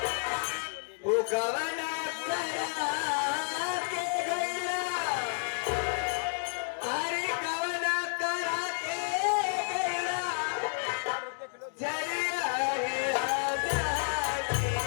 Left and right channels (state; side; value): silent; right; digital silence